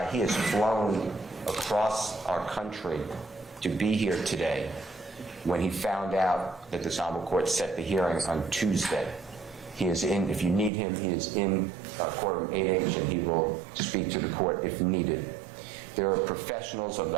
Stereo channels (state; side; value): drops out; left; at 10.7 s